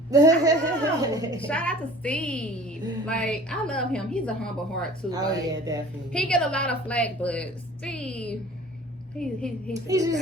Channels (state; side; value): normal; both; correlation 0.46